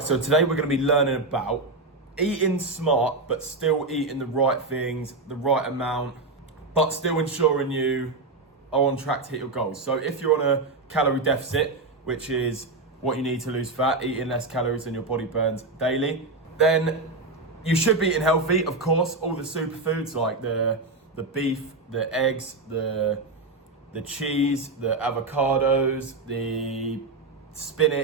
so today we're going to be learning about eating smart, but still eating the right things, the right amount, but still ensuring you are on track to hit your goals. So if you're on a calorie deficit, which is what you need to lose fat, eating less calories than your body burns daily, then you should be eating healthy. Of course, all the superfoods like the beef, the eggs, the cheese, the avocados, the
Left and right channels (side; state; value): left; quieter; 3.4 dB